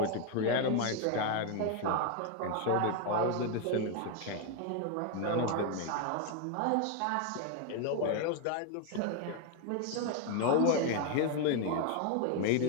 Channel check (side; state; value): both; different; correlation 0.01